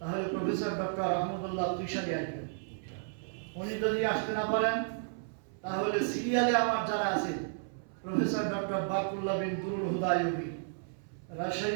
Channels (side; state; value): left; silent; 56 dB below the other